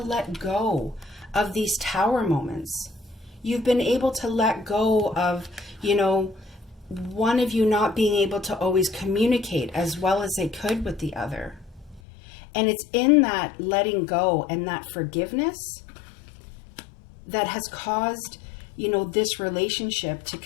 let go of these tower moments. You've been able to let go of, you know, one of you not being able to always communicate as well as they could with the other. And it's in that letting go and that forgiveness that has caused, you know, this relationship to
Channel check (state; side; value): drops out; right; at 12.0 s